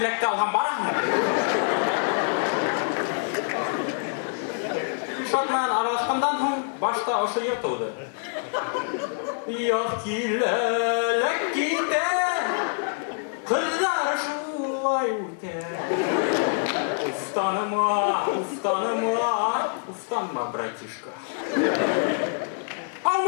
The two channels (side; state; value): right; silent; digital silence